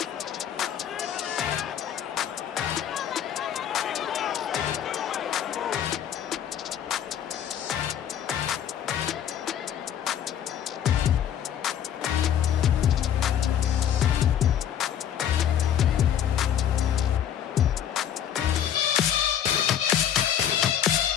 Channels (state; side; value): quieter; right; 9.7 dB